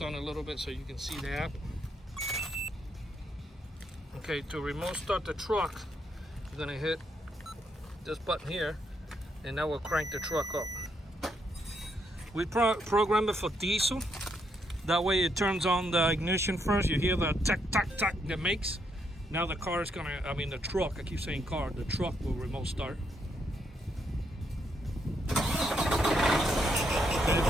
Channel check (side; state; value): both; normal; correlation 0.77